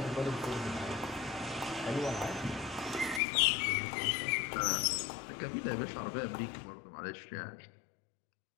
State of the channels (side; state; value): right; drops out; at 3.2 s